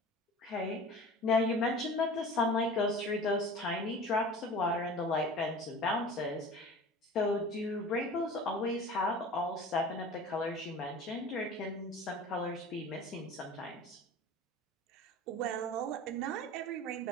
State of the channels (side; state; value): both; normal; correlation 0.39